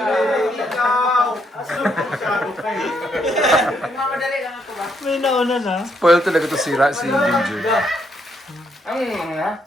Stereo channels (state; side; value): normal; both; correlation 0.75